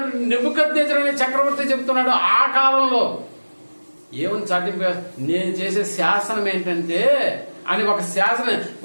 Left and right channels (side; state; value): both; inverted; correlation -1.00